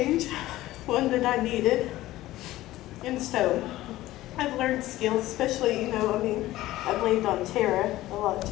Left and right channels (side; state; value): right; quieter; 16.2 dB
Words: one that I needed. And so I've learned skills, especially, you know, I mean, I've leaned on Tara a lot